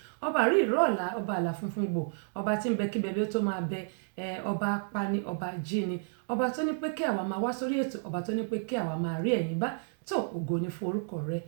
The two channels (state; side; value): silent; left; digital silence